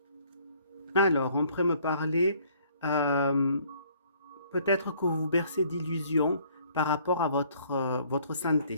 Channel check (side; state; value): both; inverted; correlation -0.60